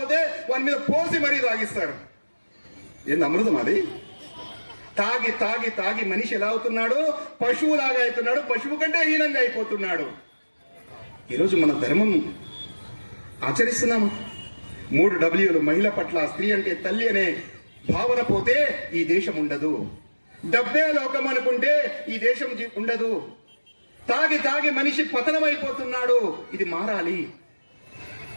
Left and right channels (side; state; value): both; inverted; correlation -1.00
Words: వాని మీద పోసి మరీ తాగిస్తారు. ఏంది అమృతం అది? తాగి తాగి తాగి మనిషి ఎలా అవుతున్నాడు? పశువులాగా అవుతున్నాడు, పశువు కంటే హీనంగా అయిపోతున్నాడు. ఈరోజు మన ధర్మం ఆచరిస్తున్నాము. 3 Wలు మహిళ పట్ల, స్త్రీ అంటే తల్లి అనే భావన పోతే ఈ దేశం ఉండదు. డబ్బే లోకం అనుకుంటే ఈ దేశం ఉండదు. తాగి తాగి మనిషి పతనమైపోతున్నాడు. ఇది మారాలి.